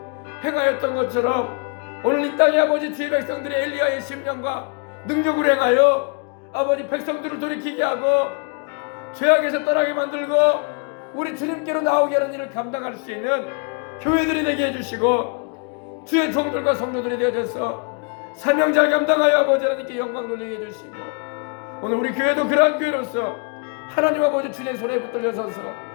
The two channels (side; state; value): right; quieter; 37.1 dB